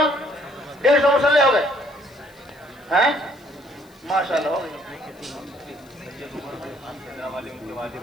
150 مصلح ہو گئے ہیں, ماشاءاللہ ہو گئے.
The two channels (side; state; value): left; noise; hiss, 29 dB below the sound